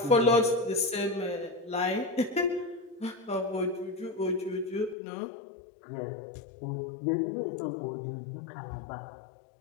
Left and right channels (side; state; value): right; drops out; at 5.0 s